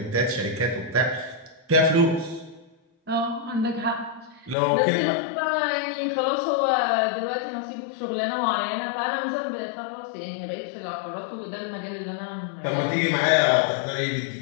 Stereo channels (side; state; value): right; drops out; at 4.5 s